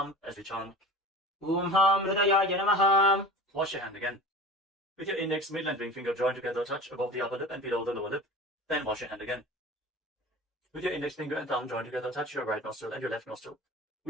as we chant. Om Ham Hridayaya Namaha. Wash your hand again. With your index, middle and ring finger joined together, touch above the upper lip and below the lower lip. Then wash your hand again. With your index finger and thumb joined together, touch your right nostril and your left nostril.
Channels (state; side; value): normal; both; correlation 0.37